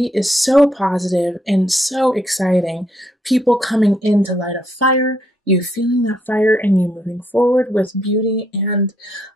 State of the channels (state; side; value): normal; both; correlation 0.73